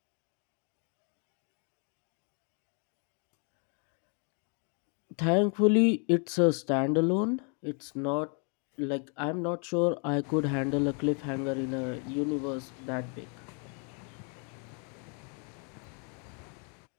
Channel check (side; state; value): right; quieter; 39.1 dB